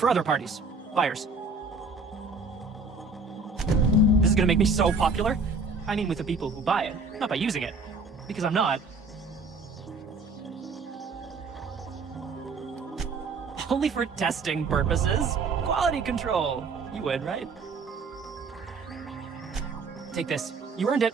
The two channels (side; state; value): left; quieter; 3.8 dB